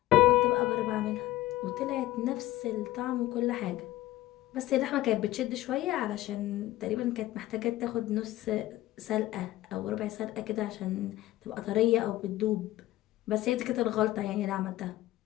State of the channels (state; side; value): quieter; right; 16.0 dB